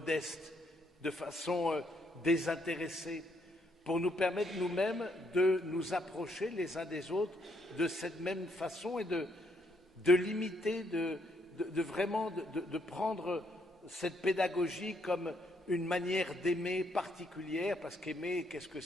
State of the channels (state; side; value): normal; both; correlation 0.73